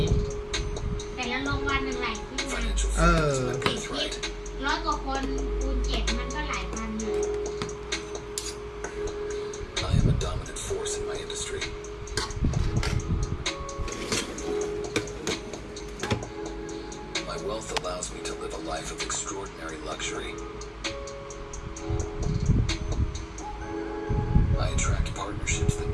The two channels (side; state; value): both; identical; correlation 1.00